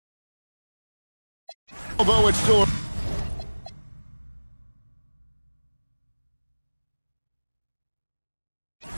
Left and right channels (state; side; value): inverted; both; correlation -1.00